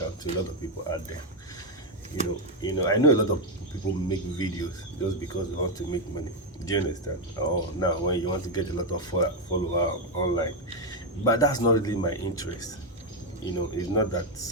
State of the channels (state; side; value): normal; both; correlation 0.03